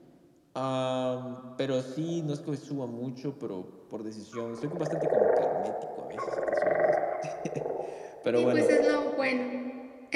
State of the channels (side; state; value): both; identical; correlation 1.00